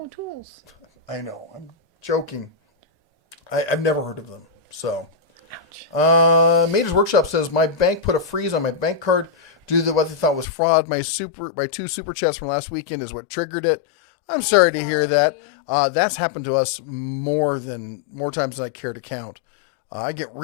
tools. I know. I'm joking. I've never heard of them. So, ouch. Mater's Workshop says, my bank put a freeze on my bank card due to what they thought was fraud. My 2 super chats from last weekend is what triggered it. I'm sorry to hear that. That's happened to us more times than I care to count. I get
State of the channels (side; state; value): right; drops out; at 10.5 s